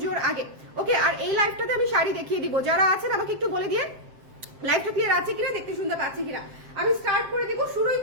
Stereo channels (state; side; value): late; left; 7.6 ms